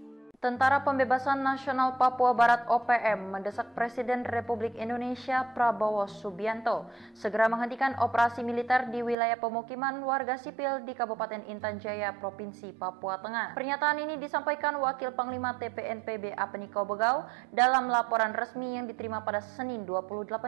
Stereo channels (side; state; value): left; drops out; at 9.2 s